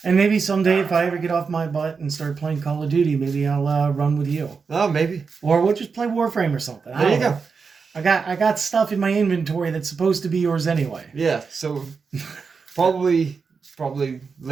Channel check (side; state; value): left; quieter; 5.2 dB